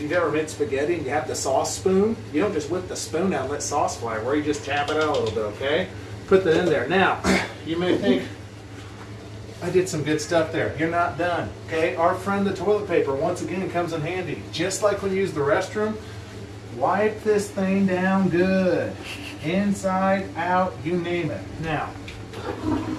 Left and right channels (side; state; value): both; identical; correlation 1.00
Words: you've ever made spaghetti and you have the sauce spoon, you don't just whip the spoon out and let sauce fly everywhere. You just tap it out a little bit, okay? Put that in there. Now, you may think, I did some good stuff there. You're not done, okay? Our friend the toilet paper, once again, comes in handy. Just like when you use the restroom, wipe this thing down good. Inside, out, you name it. Now,